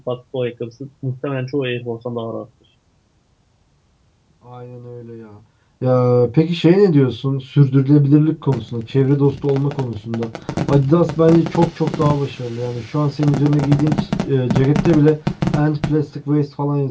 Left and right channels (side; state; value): both; identical; correlation 1.00